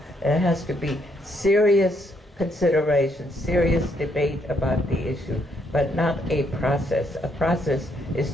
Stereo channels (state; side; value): normal; both; correlation 0.73